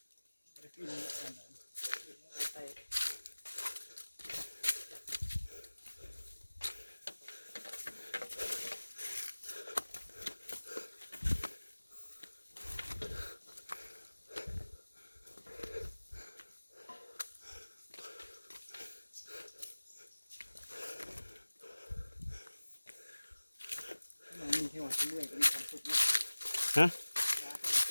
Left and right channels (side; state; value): both; inverted; correlation -1.00